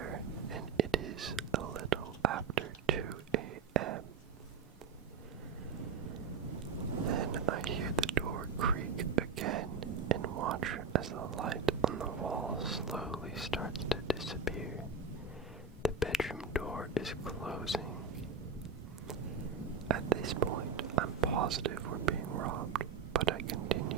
and it is a little after 2 a.m. Then I hear the door creak again and watch as the light on the wall slowly starts to disappear. The bedroom door is closing. At this point, I'm positive we're being robbed, but I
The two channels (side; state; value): left; quieter; 5.5 dB